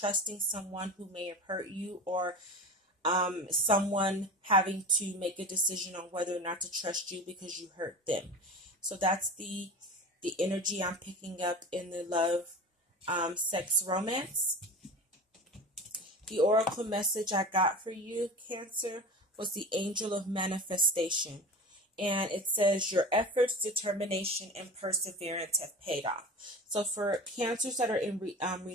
someone who may have hurt you, or someone having to make a decision on whether or not to trust you because you hurt them. So that's the energy I'm picking up in the love, sex, romance. The oracle message I got for you, Cancer, was the Angel of Manifestation. And it says, your efforts, determination, and perseverance have paid off. So for Cancers that are in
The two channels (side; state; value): both; normal; correlation 0.32